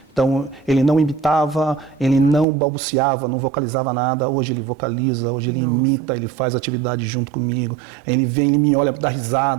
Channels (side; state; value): left; drops out; at 2.5 s